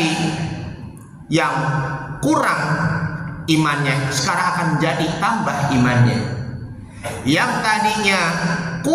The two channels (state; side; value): identical; both; correlation 1.00